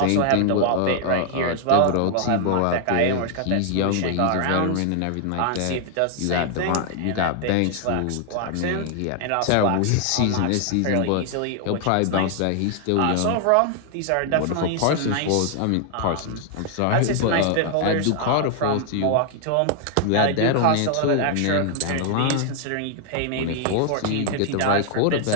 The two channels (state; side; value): different; both; correlation 0.00